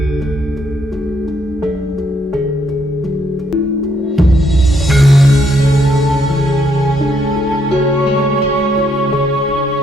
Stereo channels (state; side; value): normal; both; correlation 0.72